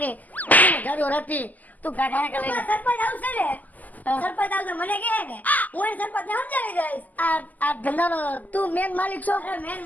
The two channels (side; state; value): right; late; 0.080 ms